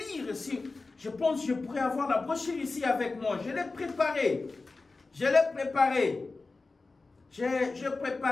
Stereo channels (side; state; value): right; quieter; 3.7 dB